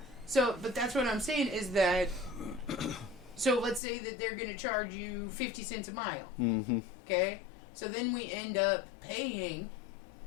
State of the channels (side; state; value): right; drops out; at 3.8 s